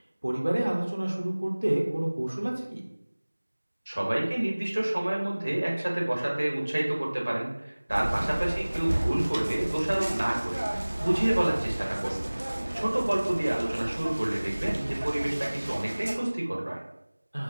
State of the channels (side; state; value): both; inverted; correlation -1.00